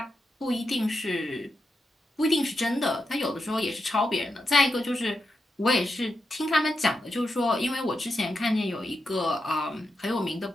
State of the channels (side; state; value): both; normal; correlation 0.87